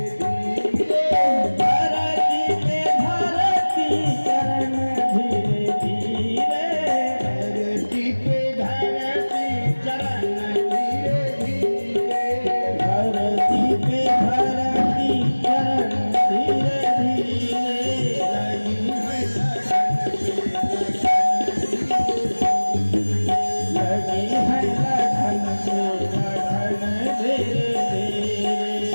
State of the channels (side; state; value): both; inverted; correlation -1.00